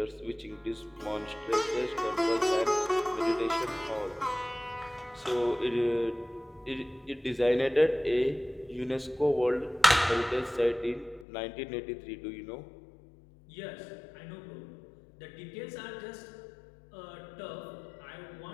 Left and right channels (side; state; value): right; drops out; at 11.2 s